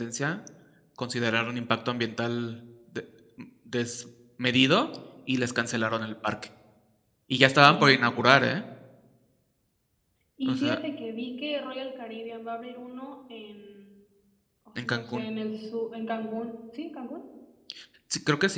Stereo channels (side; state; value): both; identical; correlation 1.00